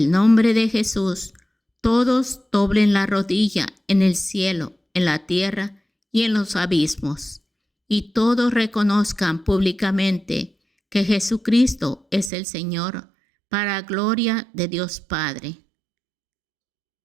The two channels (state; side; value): drops out; left; at 12.3 s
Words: nombre de Jesús todos doblen la rodilla en el cielo, en la tierra y en los abismos, y todos reconozcan públicamente que Jesucristo es el Señor, para gloria de Dios Padre.